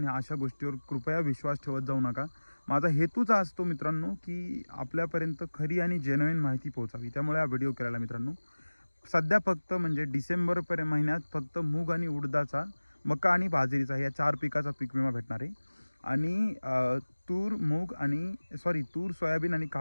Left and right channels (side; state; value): both; inverted; correlation -1.00